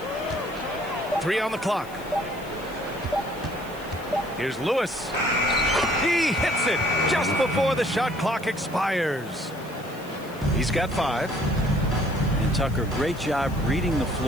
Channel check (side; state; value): left; noise; hiss, 22 dB below the sound